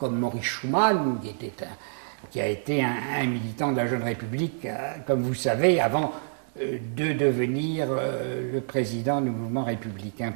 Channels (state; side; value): silent; left; digital silence